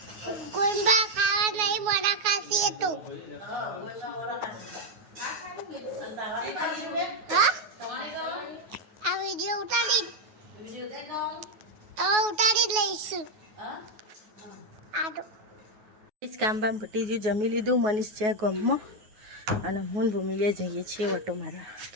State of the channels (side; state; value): left; late; 9.4 ms